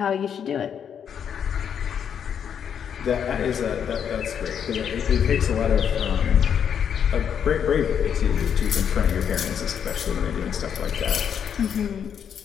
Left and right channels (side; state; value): right; quieter; 8.1 dB